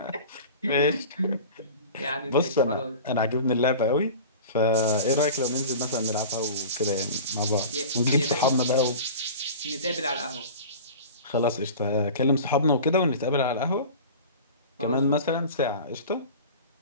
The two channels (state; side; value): inverted; both; correlation -0.36